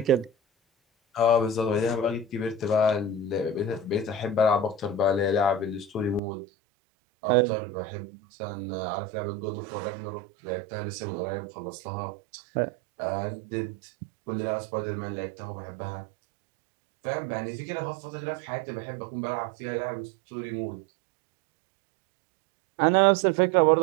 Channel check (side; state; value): left; drops out; at 6.2 s